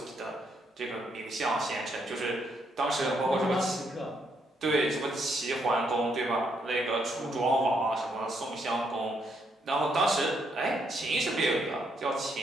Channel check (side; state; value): both; normal; correlation 0.75